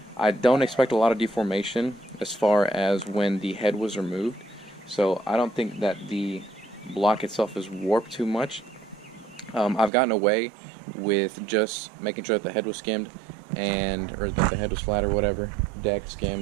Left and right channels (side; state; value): left; drops out; at 9.9 s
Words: I don't expect a lot of deformation as far as when the head was removed, so I don't think that the block itself is warped too much. I've gotten away with just making sure that the head was skimmed, or that the head was flat or whatever, deck,